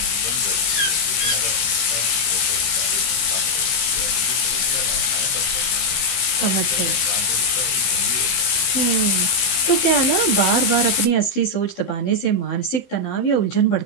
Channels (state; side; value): late; right; 15 ms